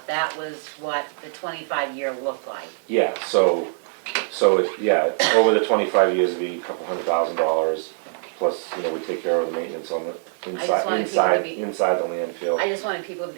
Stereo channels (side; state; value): left; silent; digital silence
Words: that was what the 25-year looked like. Yeah, so over the 25 years, it'd be a couple $100,000, plus, we take care of the maintenance on the just wanted people to be- inside the landfill. I just wanted people to